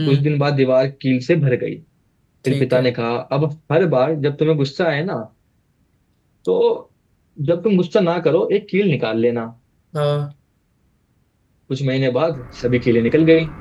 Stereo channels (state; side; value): identical; both; correlation 1.00